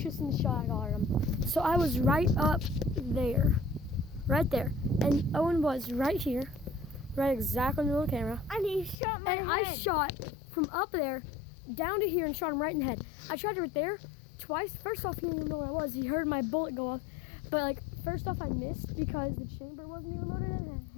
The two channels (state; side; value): drops out; right; at 9.0 s